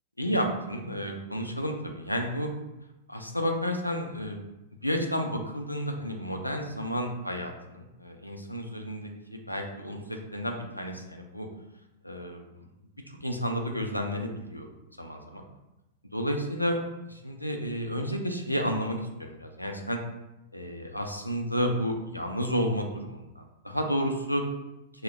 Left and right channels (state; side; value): inverted; both; correlation -0.54